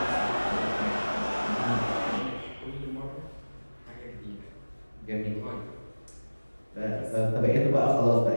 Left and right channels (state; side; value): inverted; both; correlation -1.00